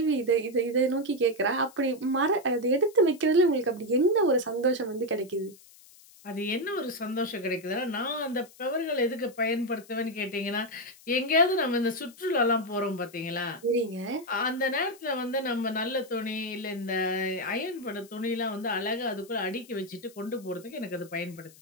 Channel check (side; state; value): left; noise; hiss, 24 dB below the sound